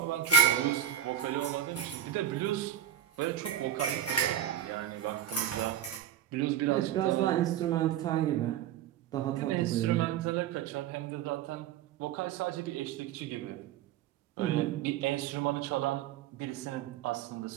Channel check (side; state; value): left; quieter; 10.3 dB